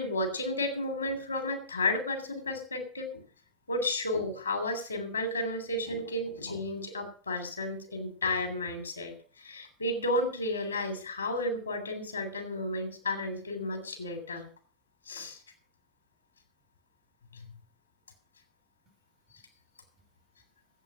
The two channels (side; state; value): both; inverted; correlation -0.39